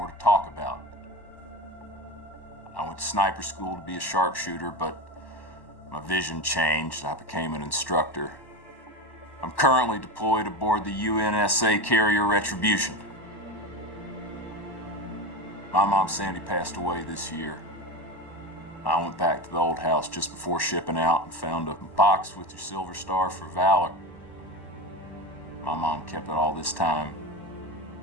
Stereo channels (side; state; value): right; late; 1.1 ms